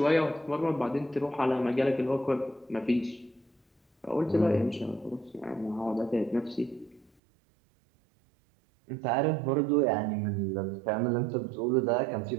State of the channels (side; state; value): left; drops out; at 7.1 s